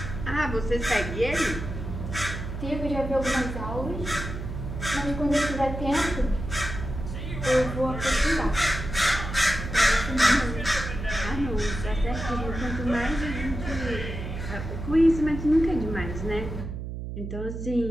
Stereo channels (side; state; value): right; noise; hum, 7 dB below the sound